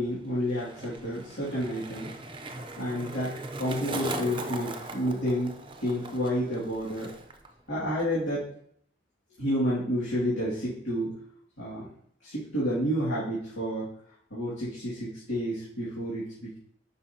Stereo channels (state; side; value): normal; both; correlation 0.55